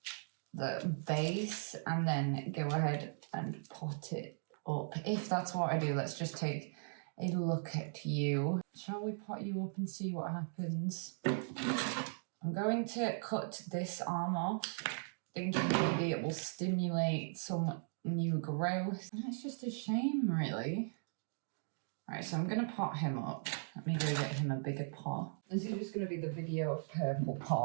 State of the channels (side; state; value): left; silent; digital silence